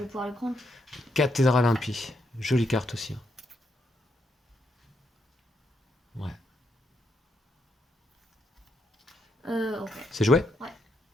vais pouvoir le prendre. Cathédrale impie. Jolie carte aussi. Hein. Ouais. Ok. C'est joué? Ouais.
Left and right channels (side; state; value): both; normal; correlation 0.78